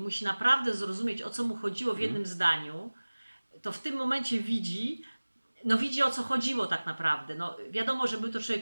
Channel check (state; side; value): inverted; both; correlation -1.00